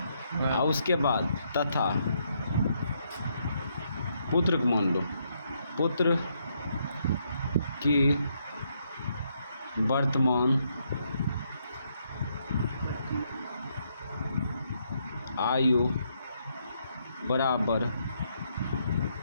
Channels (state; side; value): inverted; both; correlation -0.75